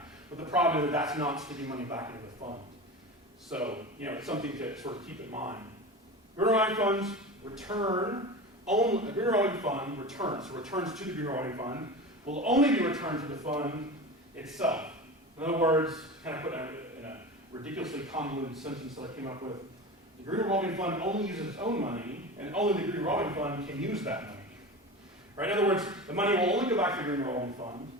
but the problem is that that's not sticking money back into the fund. So, it's something to sort of keep in mind. Green revolving funds return only, a green revolving fund returns, so returns to the green revolving fund will only be returned to the fund itself. In other words, kind of put in a ridiculously convoluted sentence that I came up with, the green revolving fund only uses its own money, and only the green revolving fund can use that money. Right? In other words, the money will only go back to the green revolving fund,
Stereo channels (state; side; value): normal; both; correlation 0.29